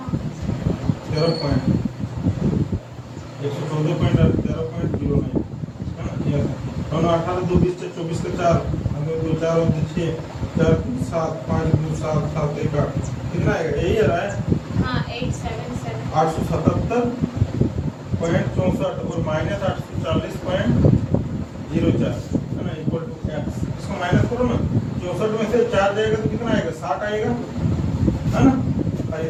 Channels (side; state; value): both; identical; correlation 1.00